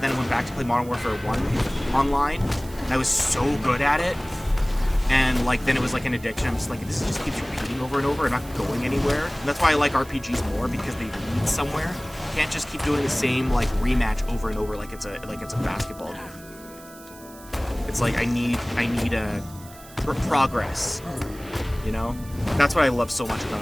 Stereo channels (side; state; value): right; noise; hiss, 20 dB below the sound